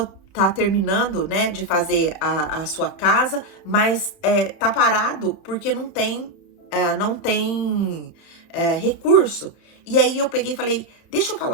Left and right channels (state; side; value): late; right; 30 ms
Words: está terminando, né, de fazer a sua casa, mas tá parado porque não tem recurso. E aí eu peguei e falei, deixa eu falar